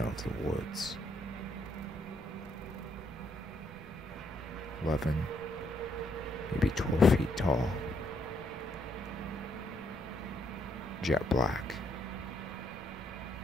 of the woods. 11, maybe 12 feet tall. Jet black.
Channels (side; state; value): both; normal; correlation 0.73